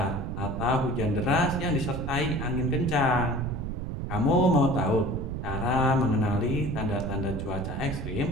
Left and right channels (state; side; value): noise; right; rumble, 5 dB below the sound